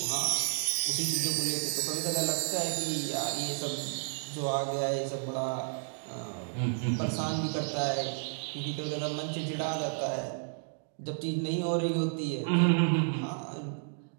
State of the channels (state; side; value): silent; left; digital silence